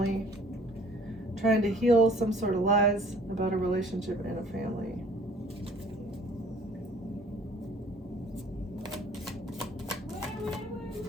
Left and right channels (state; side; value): normal; both; correlation 0.54